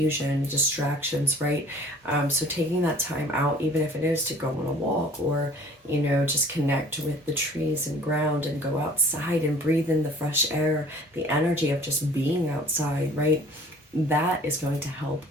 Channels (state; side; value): normal; both; correlation 0.51